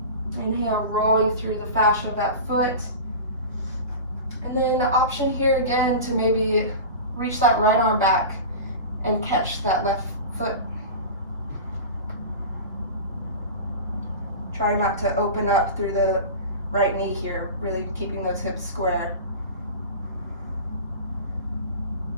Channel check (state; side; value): inverted; both; correlation -0.30